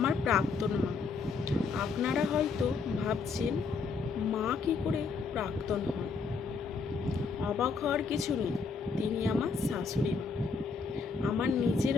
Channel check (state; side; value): quieter; right; 4.7 dB